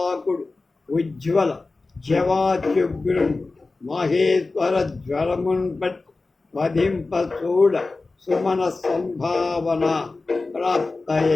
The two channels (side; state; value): right; quieter; 3.6 dB